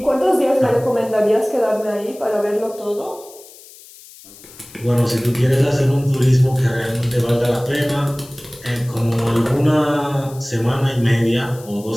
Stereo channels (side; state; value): left; noise; hiss, 21 dB below the sound